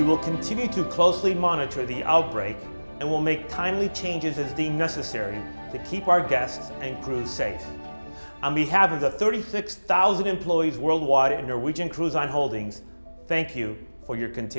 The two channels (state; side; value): inverted; both; correlation -1.00